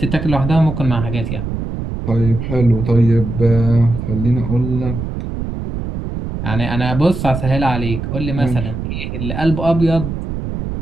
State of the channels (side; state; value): right; noise; rumble, 5 dB below the sound